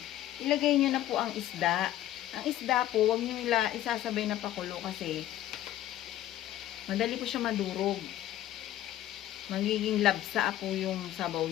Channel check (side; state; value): right; quieter; 13.2 dB